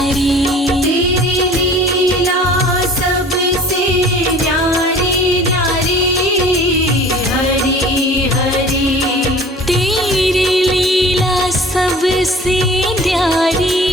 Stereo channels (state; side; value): normal; both; correlation 0.46